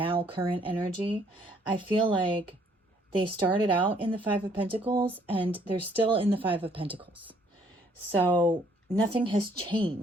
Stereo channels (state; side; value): normal; both; correlation 0.64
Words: current energy, I feel like they started out in the Five of Pentacles and they're still in the Five of Pentacles. So nothing has